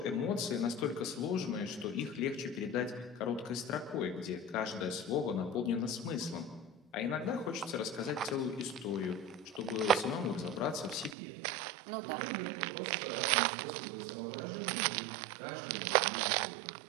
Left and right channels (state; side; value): drops out; left; at 11.2 s